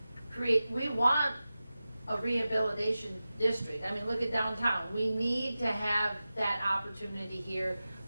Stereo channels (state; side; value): inverted; both; correlation -0.95